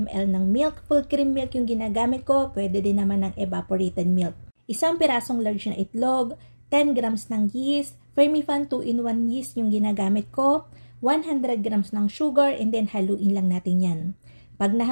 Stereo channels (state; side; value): inverted; both; correlation -1.00